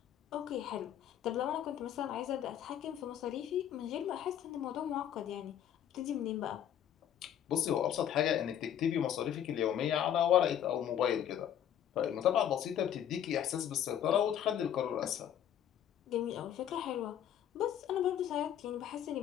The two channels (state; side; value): quieter; right; 10.1 dB